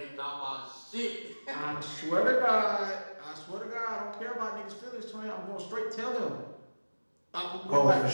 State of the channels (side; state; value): both; inverted; correlation -1.00